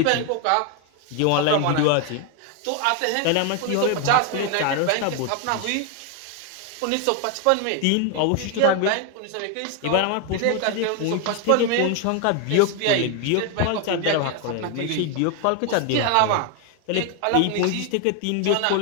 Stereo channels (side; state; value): both; different; correlation 0.01